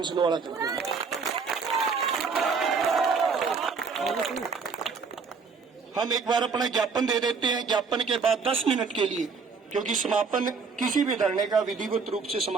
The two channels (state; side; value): quieter; left; 5.2 dB